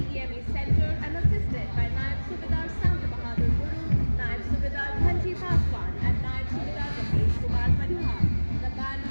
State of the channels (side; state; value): both; inverted; correlation -1.00